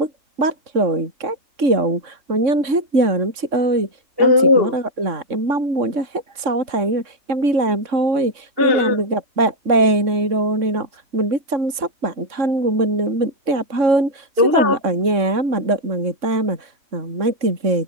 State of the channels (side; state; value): left; late; 3.6 ms